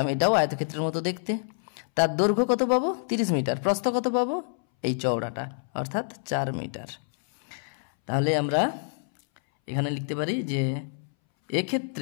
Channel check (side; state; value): right; silent; 60 dB below the other